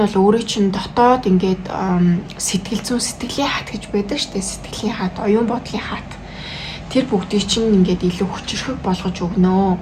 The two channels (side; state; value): both; identical; correlation 1.00